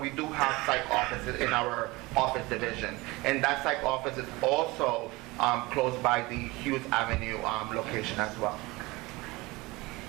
we do have psych offices in our office division. And that psych office is also close by the Hughes Avenue location as well.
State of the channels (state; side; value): quieter; left; 22.3 dB